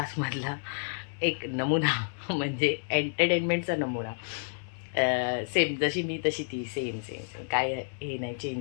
एक नमुना, म्हणजे एंटरटेनमेंटचा नमुना. सेम जशी मी तशी ती, सेम काय हे नाही,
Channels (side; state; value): right; silent; 58 dB below the other